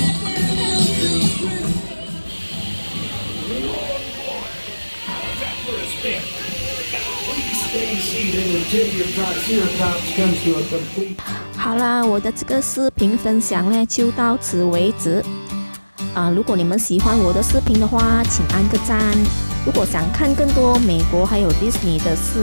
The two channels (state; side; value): inverted; both; correlation -1.00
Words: 好啦，我的这个视频分享呢就到此为止。如果你们喜欢我的视频的话，请按个赞。如果想看更多美国还有 Disney 的视